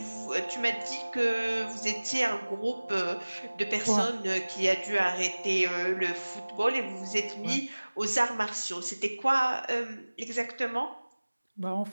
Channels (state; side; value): inverted; both; correlation -1.00